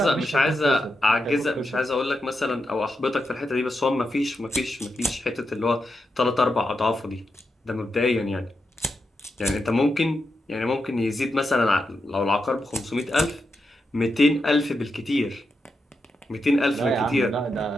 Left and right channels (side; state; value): both; normal; correlation 0.86